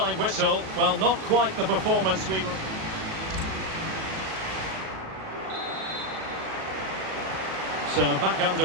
whistle. Well, not quite the performance we were... So back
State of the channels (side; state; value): left; late; 37 ms